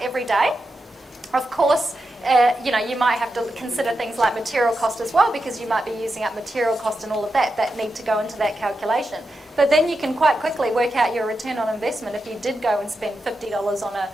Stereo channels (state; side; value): normal; both; correlation 0.88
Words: every day. Of course, you might have to consider things like material cost as well, because you might be using up material cost and all of that need to go into that calculation. But then you can quite quickly work out your return on investment if you did go and spend $50 on